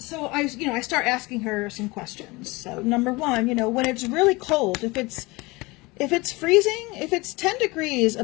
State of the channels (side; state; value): right; quieter; 23.6 dB